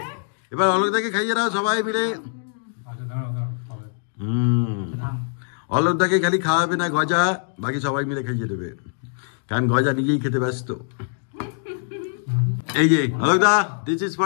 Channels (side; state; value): right; silent; digital silence